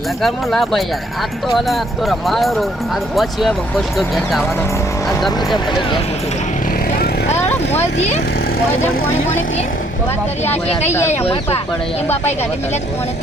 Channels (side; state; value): both; normal; correlation 0.66